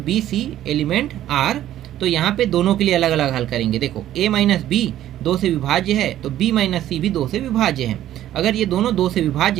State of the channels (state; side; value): quieter; left; 12.6 dB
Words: सी एलिमेंट आर, तो यहाँ पे दोनों के लिए अलग अलग हल करेंगे। देखो ए माइनस बी 2 से विभाज्य है, तो बी माइनस सी भी 2 से विभाज्य है। अगर ये दोनों 2 से